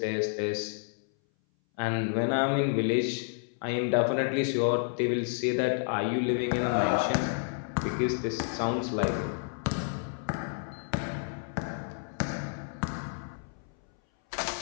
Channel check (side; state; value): right; silent; 58 dB below the other